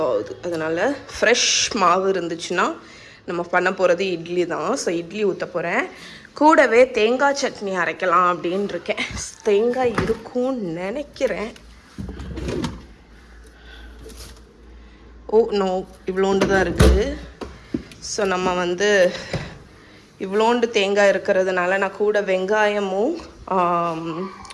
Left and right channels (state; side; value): identical; both; correlation 1.00